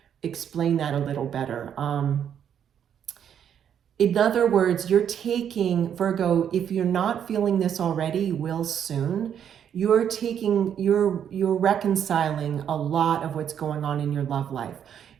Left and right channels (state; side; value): quieter; left; 8.9 dB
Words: explain that a little better. In other words, you're taking, Virgo, if you're not feeling this already, you will soon. You're reconciling a lot of what's going on in your love life.